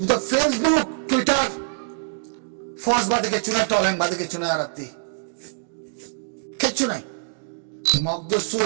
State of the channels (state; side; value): silent; left; digital silence